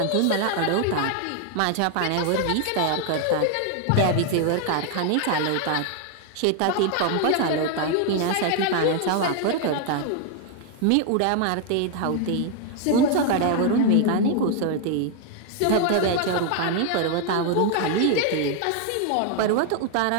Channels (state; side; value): different; both; correlation 0.01